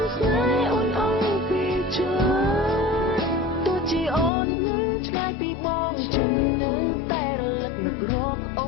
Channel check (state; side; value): drops out; right; at 4.3 s